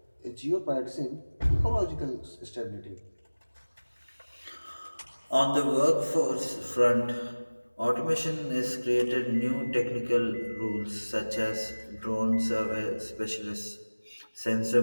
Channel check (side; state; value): both; inverted; correlation -1.00